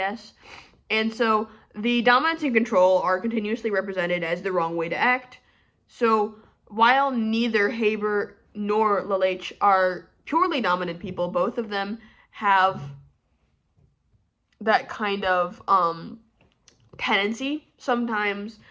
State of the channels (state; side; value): identical; both; correlation 1.00